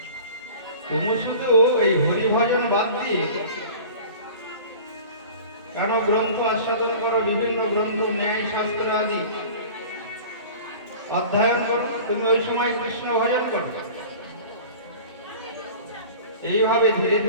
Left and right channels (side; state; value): both; inverted; correlation -0.41